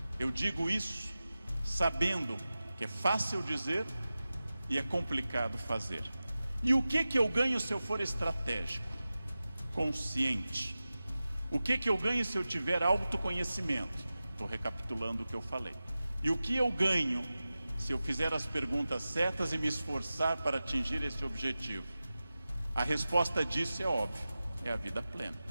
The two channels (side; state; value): both; inverted; correlation -0.95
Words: Eu digo isso sabendo que é fácil dizer e é complicado fazer. E o que eu ganho se eu for estratégico, consciente? O que eu ganho se eu tiver autoconhecimento? Estou recapitulando o que eu falei. E o que eu ganho se eu fizer as perguntas certas e me esforçar para atingir esse objetivo? A resposta disso é óbvia, é a vida plena.